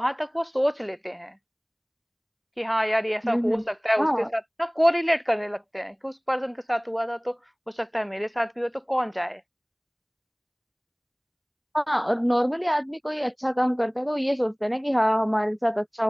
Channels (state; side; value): identical; both; correlation 1.00